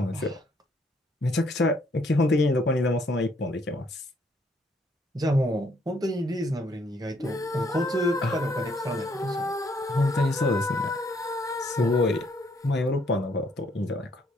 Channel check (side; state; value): both; normal; correlation 0.68